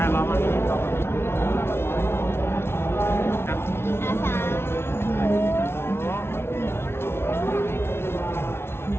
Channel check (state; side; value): late; right; 0.12 ms